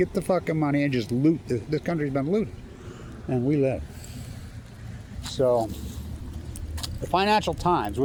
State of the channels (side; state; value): both; identical; correlation 1.00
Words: the fucking money, and just loot. This country's been looted. And we live. So, the Financial Times,